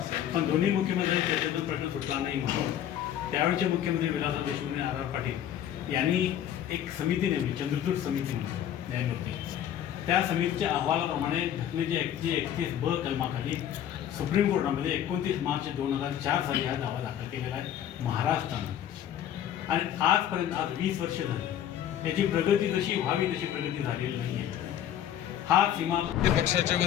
पण दोन्ही मुख्यमंत्र्यांच्या चर्चेतून प्रश्न सुटला नाही म्हणून त्यावेळेचे मुख्यमंत्री विलासराव देशमुख आणि आर पाटील यांनी एक समिती नेमली, चंद्रचूड समिती म्हणून न्यायमूर्ती. त्या समितीच्या अहवालाप्रमाणे घटनेच्या 131 ब कलमाखाली सुप्रीम कोर्टामध्ये 29 मार्च 2004 साली हा दावा दाखल केलेला आहे महाराष्ट्रानं. आणि आजपर्यंत आज 20 वर्ष झाली त्याची प्रगती जशी व्हावी तशी प्रगती झालेली नाही आहे. हा सीमा पक्षाच्या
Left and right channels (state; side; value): quieter; right; 10.6 dB